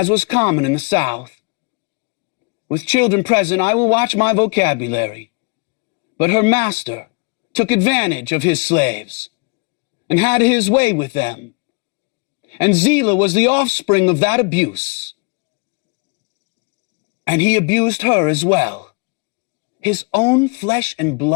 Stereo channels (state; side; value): quieter; right; 32.7 dB